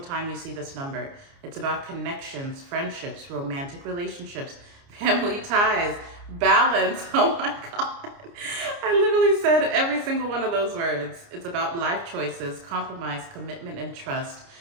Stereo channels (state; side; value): late; left; 29 ms